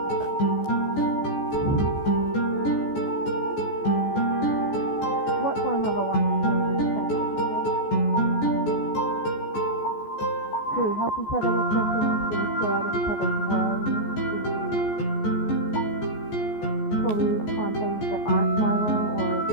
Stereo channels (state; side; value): late; right; 14 ms